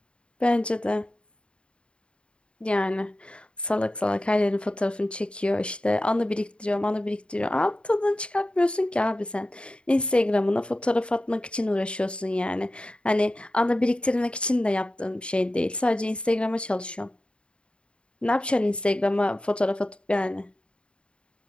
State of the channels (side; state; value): right; late; 0.055 ms